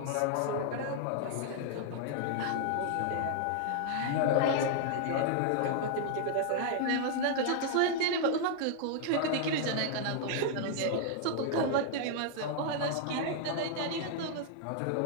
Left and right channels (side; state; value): both; different; correlation -0.01